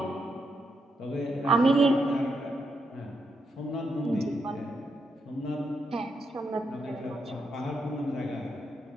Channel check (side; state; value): both; normal; correlation 0.81